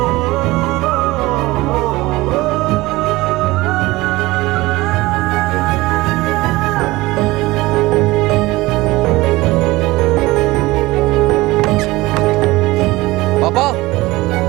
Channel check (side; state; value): left; quieter; 20.0 dB